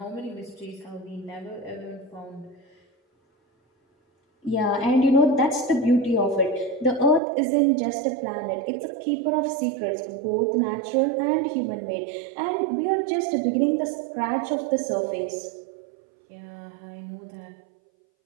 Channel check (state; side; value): drops out; left; at 7.2 s